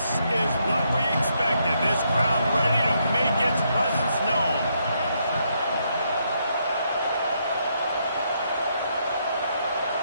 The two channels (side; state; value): both; inverted; correlation -0.76